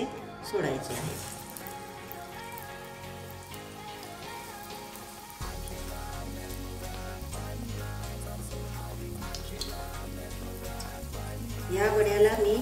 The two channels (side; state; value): both; identical; correlation 1.00